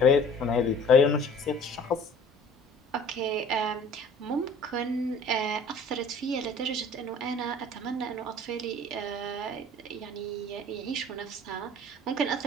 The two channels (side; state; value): both; normal; correlation 0.49